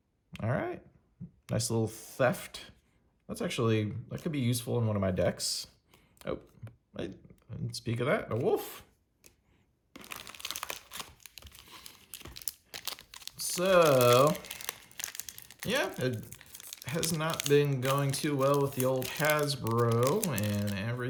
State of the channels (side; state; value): both; identical; correlation 1.00